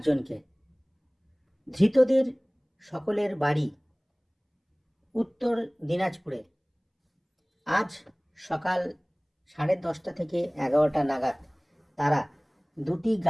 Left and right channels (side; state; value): both; identical; correlation 1.00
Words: জনকে। ধৃতদের সকলের বাড়ি উত্তর দিনাজপুরে। আজ সকাল 10:30 থেকে 11টা নাগাদ তারা দুটি